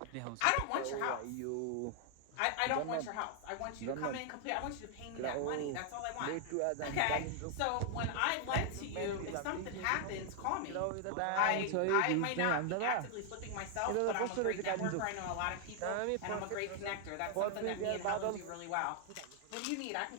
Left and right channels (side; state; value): both; different; correlation 0.00